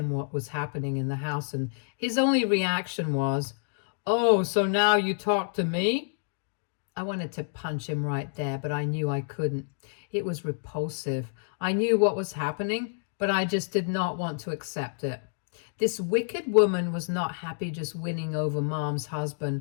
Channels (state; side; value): silent; right; digital silence